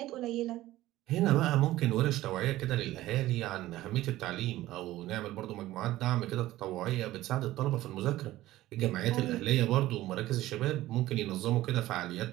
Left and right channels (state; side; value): quieter; left; 15.8 dB